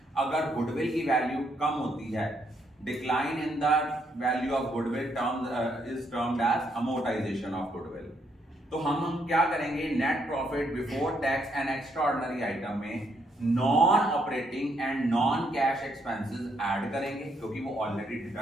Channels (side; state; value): both; normal; correlation 0.74